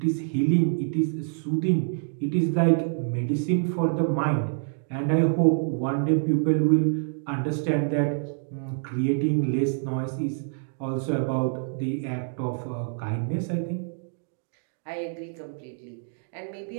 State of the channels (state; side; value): silent; left; digital silence